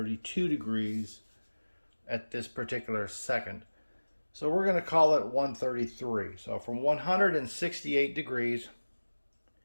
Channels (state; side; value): inverted; both; correlation -1.00